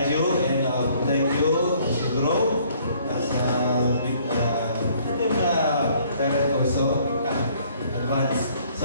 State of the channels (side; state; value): both; inverted; correlation -0.61